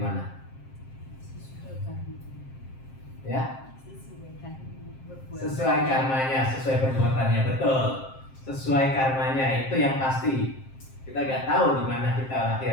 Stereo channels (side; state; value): right; late; 7.6 ms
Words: mana? Ya? Sesuai karmanya, sesuai perbuatannya, betul. Sesuai karmanya, itu yang pasti. Kita nggak tahu di mana kita